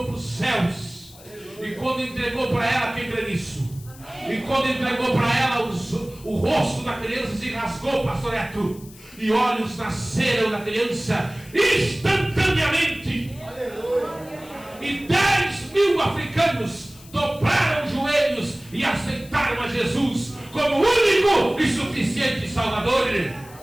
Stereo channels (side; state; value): left; noise; hiss, 21 dB below the sound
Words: para os céus. E quando entregou para ela, quem crê nisso? E quando entregou para ela, o rosto da criança se rasgou, pastor Neto, e olhos nasceram na criança instantaneamente. E 10.000 africanos dobraram os joelhos e aceitaram a Jesus como único e suficiente Salvador.